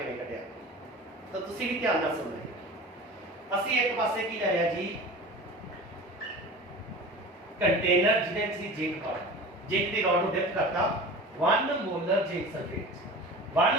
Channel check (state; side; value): normal; both; correlation 0.36